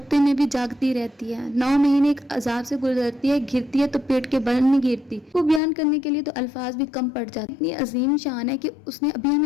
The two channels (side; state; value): right; drops out; at 5.6 s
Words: میں بھی جاگتی رہتی ہے۔ 9 مہینے ایک عذاب سے گزرتی ہے، گرتی ہے تو پیٹ کے بل نہیں گرتی۔ وہ بیان کرنے کے لیے تو الفاظ بھی کم پڑ جاتے۔ اتنی عظیم شان ہے کہ اس نے ابھی